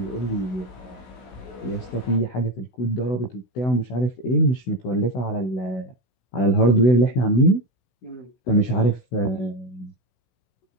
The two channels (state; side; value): late; right; 16 ms